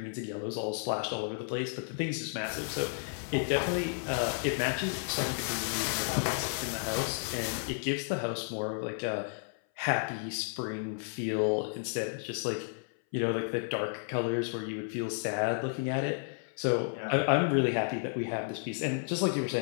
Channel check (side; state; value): right; silent; 56 dB below the other